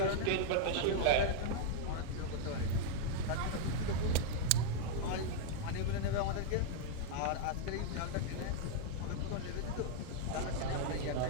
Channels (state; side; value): different; both; correlation -0.01